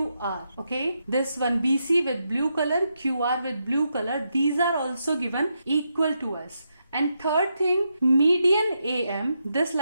Okay, this one BC with blue color, QR with blue color, these are also given equal to us. And third thing, median AM, this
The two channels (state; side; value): inverted; both; correlation -0.83